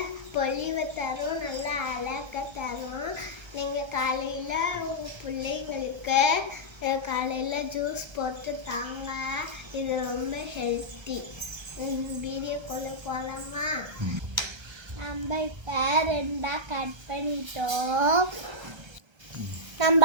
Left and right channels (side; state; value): left; late; 1.3 ms